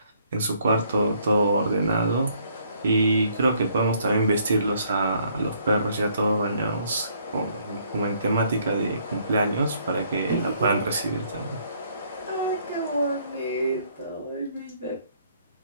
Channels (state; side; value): inverted; both; correlation -0.66